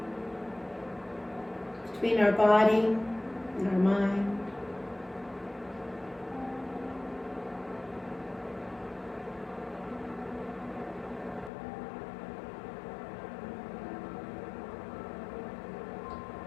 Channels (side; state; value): right; drops out; at 11.5 s